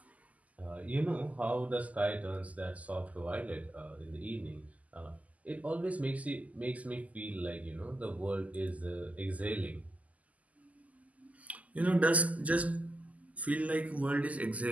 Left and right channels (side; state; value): left; late; 0.073 ms